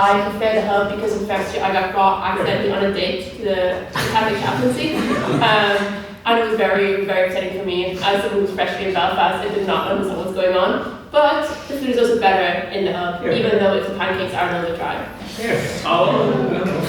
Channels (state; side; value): identical; both; correlation 1.00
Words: prefer the hub because in first year I got brought accidentally on a date to the Catholic chaplaincy. And it was very, very upsetting for me. As someone who's freshly in Belfast, I did not understand what's going on. But the food is also better in the hub, even though the pancakes are a little bit dry.